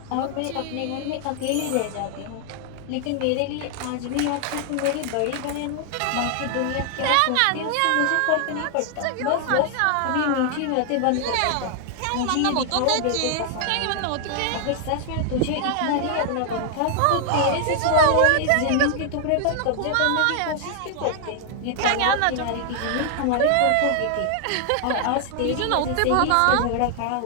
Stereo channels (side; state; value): both; different; correlation 0.00